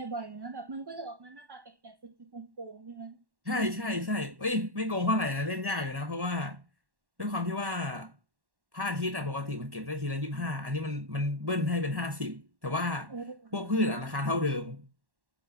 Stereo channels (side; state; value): left; late; 1.1 ms